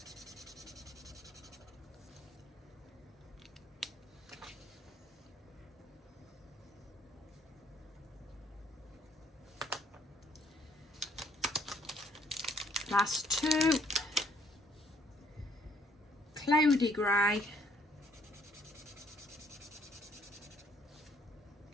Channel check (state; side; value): normal; both; correlation 0.64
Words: Last 2. Cloudy Grey.